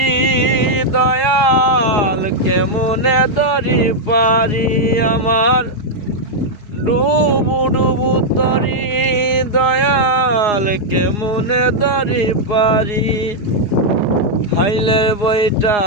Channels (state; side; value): late; right; 4.8 ms